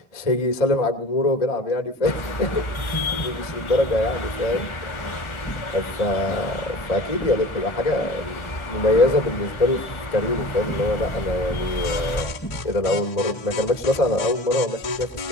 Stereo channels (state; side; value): late; right; 1.4 ms